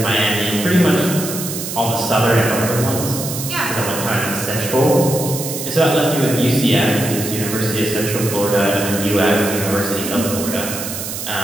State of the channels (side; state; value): right; noise; hiss, 6 dB below the sound